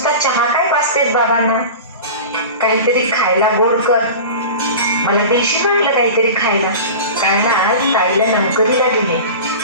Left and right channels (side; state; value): both; inverted; correlation -0.32